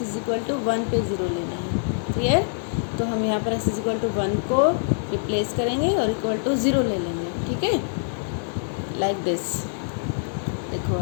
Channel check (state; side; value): silent; right; digital silence